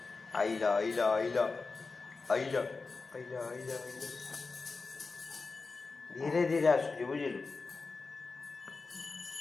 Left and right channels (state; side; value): quieter; right; 4.1 dB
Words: आइला आइला आइला आइला आइला आइला आइला धीरे धीरे आसुची बुझिलु